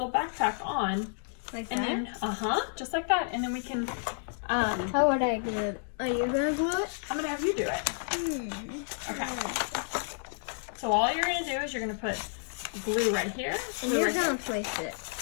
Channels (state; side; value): silent; right; digital silence